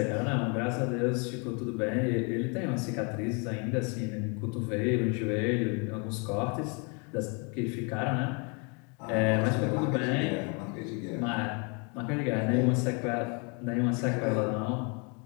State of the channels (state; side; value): quieter; right; 34.5 dB